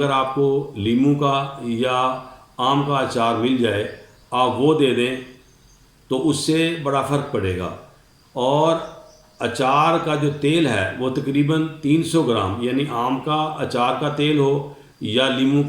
आपको लीमू का या आम का अचार मिल जाए आप वो दे दें तो उससे बड़ा फ़र्क पड़ेगा। और अचार का जो तेल है वो तकरीबन 300 ग्राम, यानी आम का अचार का तेल हो या लीमू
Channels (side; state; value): both; identical; correlation 1.00